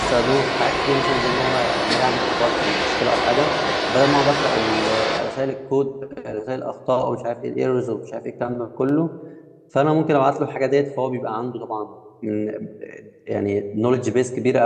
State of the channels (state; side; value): identical; both; correlation 1.00